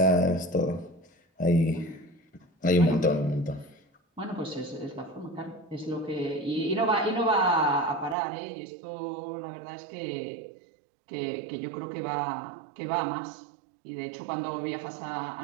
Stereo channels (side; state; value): left; drops out; at 8.2 s